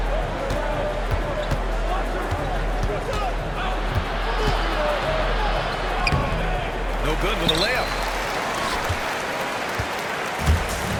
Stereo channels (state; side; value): identical; both; correlation 1.00